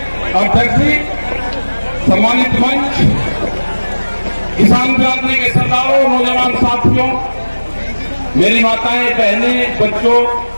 अध्यक्ष जी, सम्मानित मंच, किसान क्रांति के सरदारों, नौजवान साथियों, मेरी माताएं, बहनें, बच्चों,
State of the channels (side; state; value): both; inverted; correlation -1.00